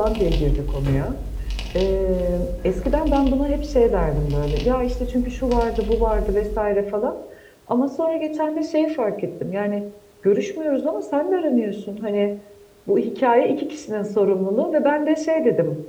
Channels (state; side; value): identical; both; correlation 1.00